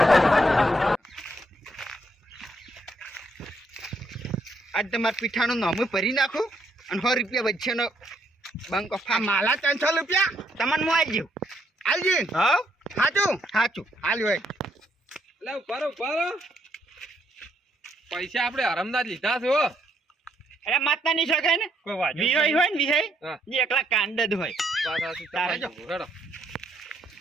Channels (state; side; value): normal; both; correlation 0.73